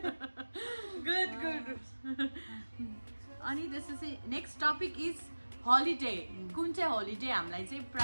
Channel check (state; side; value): inverted; both; correlation -1.00